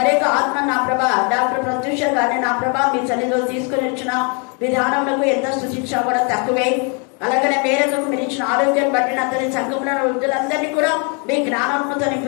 ఆత్మ నా ప్రభా డాక్టర్ ప్రత్యూష గారిని నా ప్రభా మీ సన్నిధిలో తీసుకుని వచ్చిన విధానములకు ఎంత స్తుతించినా కూడా తక్కువే. అలాగనే మేరకు మీరు ఇచ్చిన ఆరోగ్యాన్ని బట్టి అతని సంఘంలో వృద్ధులందరినీ కూడా మీ జ్ఞానంతో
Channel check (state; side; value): quieter; right; 36.3 dB